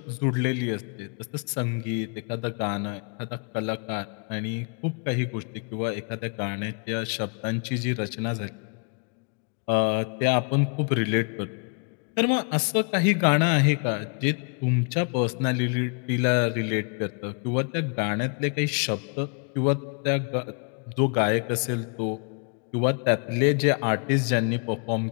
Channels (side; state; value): right; quieter; 39.8 dB